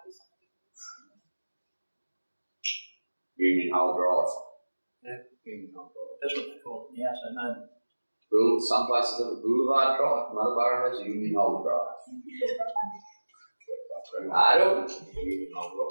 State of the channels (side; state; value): both; inverted; correlation -1.00